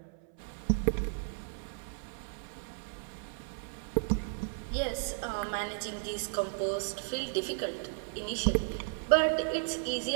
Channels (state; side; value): silent; left; 55 dB below the other